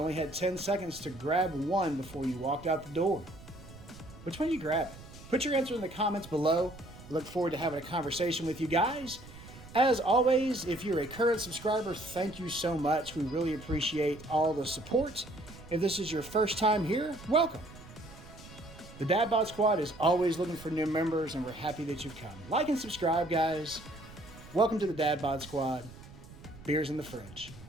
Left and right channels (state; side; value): noise; right; rumble, 18 dB below the sound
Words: had 10 seconds to grab one before you walked out the door. Which one you grab? Put your answer in the comments below. I look forward to having a conversation with you guys. As always, if you're a current subscriber, thank you so much. We really appreciate all the support. If this is your first time here, welcome. The Dad Bod Squad is always looking for new members, and we're happy that you've come. Like and subscribe, guys. Welcome to the Dad Bod Squad. Beers in the fridge.